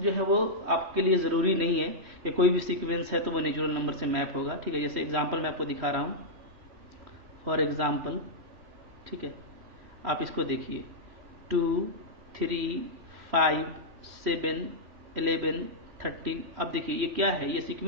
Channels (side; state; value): left; late; 3.4 ms